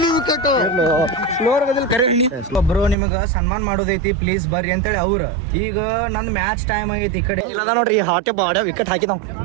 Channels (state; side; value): drops out; left; at 3.0 s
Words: ವಿಕೆಟ್. ಒಬ್ರು ನಿಮಗ ಸನ್ಮಾನ ಮಾಡೋದೈತಿ, ಪ್ಲೀಸ್ ಬರ್ರಿ ಅಂತೇಳಿ ಅವ್ರ. ಈಗ ನಂದ್ ಮ್ಯಾಚ್ ಟೈಮ್ ಆಗೈತಿ. ಈ ಕಡೆ ಇಲ್ಲದ ನೋಡ್ರಿ, ಹಾಟೆ ಬಾಡ ವಿಕೆಟ್ ಹಾಕಿದಾವ್